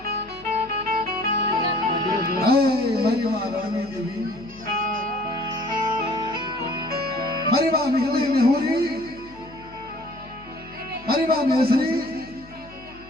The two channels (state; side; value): noise; left; hum, 22 dB below the sound